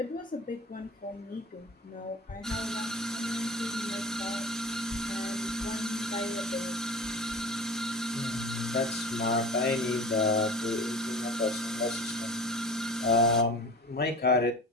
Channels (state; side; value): normal; both; correlation 0.36